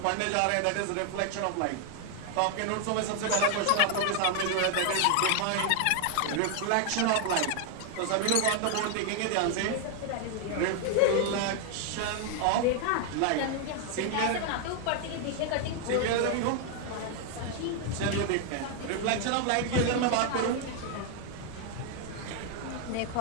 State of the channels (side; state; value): both; different; correlation 0.00